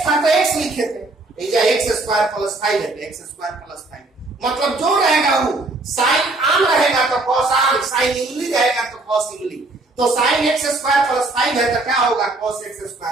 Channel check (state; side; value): quieter; left; 3.0 dB